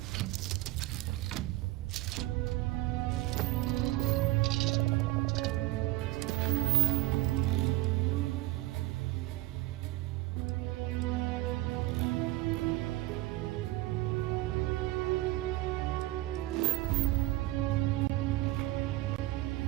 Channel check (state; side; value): quieter; left; 18.2 dB